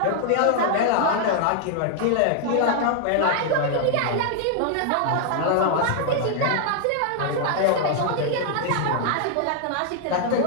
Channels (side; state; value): both; different; correlation 0.00